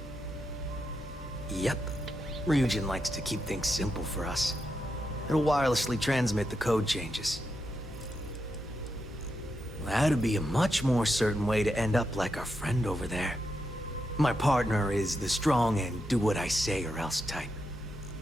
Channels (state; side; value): normal; both; correlation 0.85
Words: Yep. Ryujin likes to keep things simple for us. It'll wirelessly transmit the code changes. That'd be a much more certain way to end up like our friend over there. My partner is the strong and do what I say or else type.